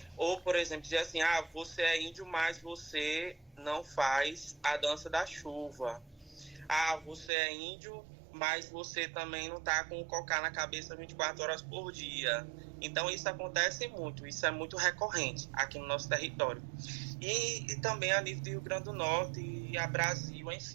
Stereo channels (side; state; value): left; drops out; at 7.3 s